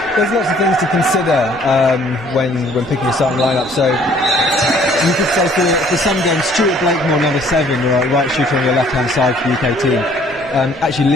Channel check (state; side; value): noise; right; rumble, 25 dB below the sound